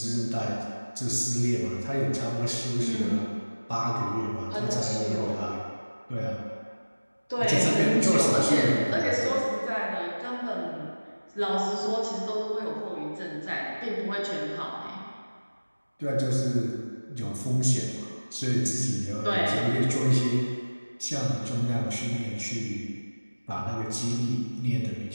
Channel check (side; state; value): both; inverted; correlation -1.00